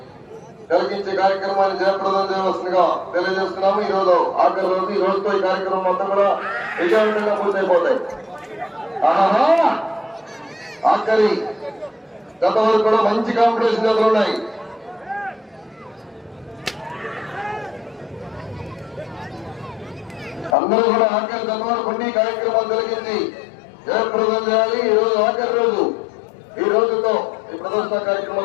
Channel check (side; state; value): right; drops out; at 20.6 s